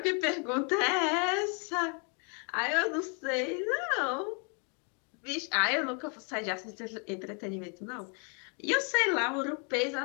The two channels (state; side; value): quieter; right; 37.8 dB